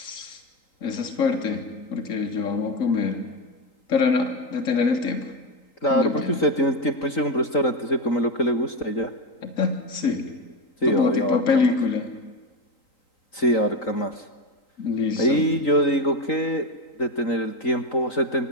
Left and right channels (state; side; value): late; right; 3.9 ms